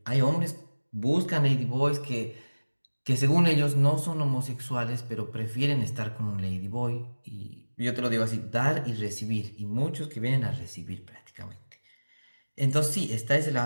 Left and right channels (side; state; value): both; inverted; correlation -1.00